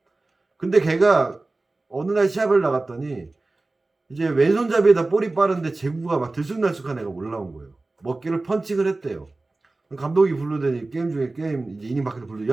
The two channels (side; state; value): left; quieter; 3.2 dB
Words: 근데 걔가 어느 날 시합을 나갔더니 이제 왼손잡이에다 볼이 빠른데 제구가 막 들쑥날쑥한 애가 올라온 거예요. 먹기를 펀칭을 했대요. 감독이 부르더니 게임 중에 이제 이닝 밖에서 부르더니